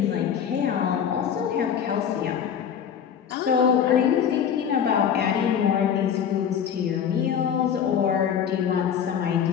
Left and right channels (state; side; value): quieter; right; 8.2 dB